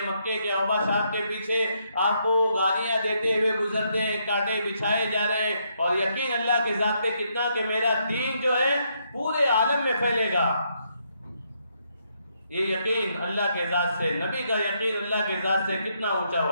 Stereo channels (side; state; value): both; inverted; correlation -0.76